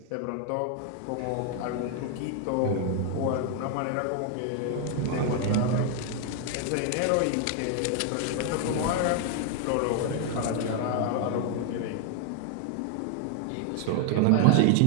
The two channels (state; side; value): different; both; correlation 0.00